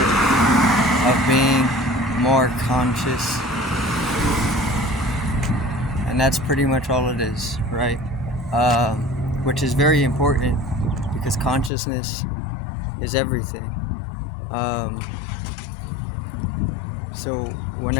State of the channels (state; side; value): drops out; right; at 11.7 s